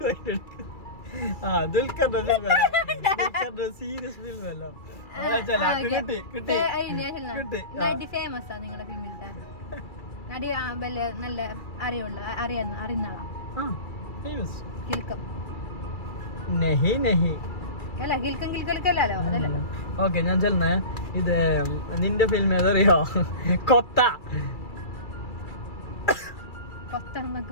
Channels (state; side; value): late; right; 2.3 ms